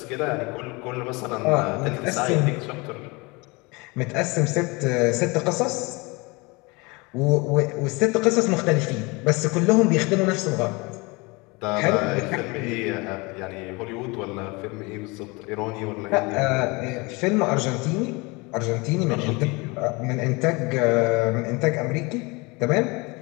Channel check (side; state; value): right; quieter; 26.3 dB